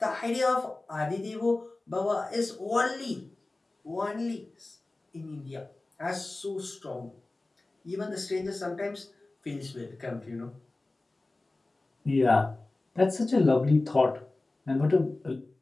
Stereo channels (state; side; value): quieter; right; 3.0 dB